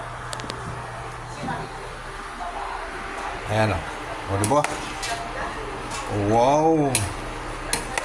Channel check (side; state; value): both; identical; correlation 1.00